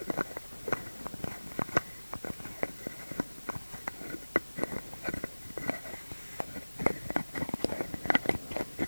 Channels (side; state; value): both; inverted; correlation -1.00